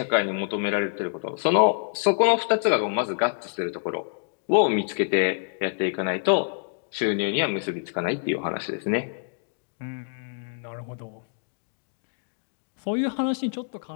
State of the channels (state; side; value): silent; right; digital silence